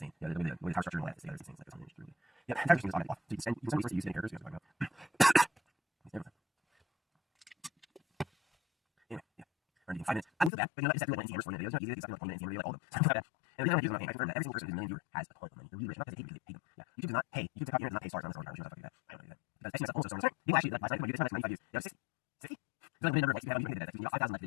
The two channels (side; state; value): right; drops out; at 10.5 s